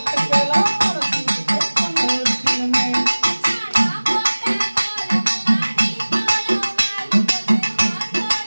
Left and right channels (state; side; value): inverted; both; correlation -1.00